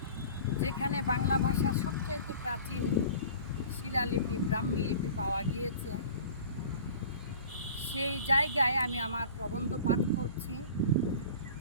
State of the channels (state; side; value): inverted; both; correlation -0.42